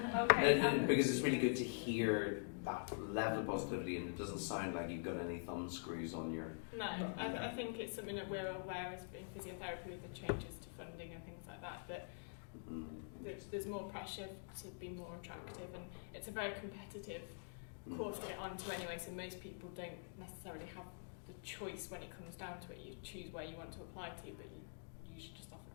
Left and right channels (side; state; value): right; silent; digital silence